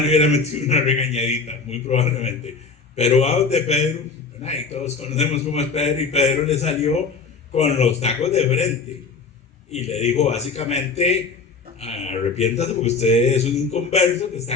le hubiera metido una regañadita, muy probablemente. Pero va donde Pedro, y todos conocemos cómo es Pedro, y Pedro le salió con los tacos de frente y le dijo básicamente: arrepiéntase porque usted es un inconverso que está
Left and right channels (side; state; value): right; quieter; 4.5 dB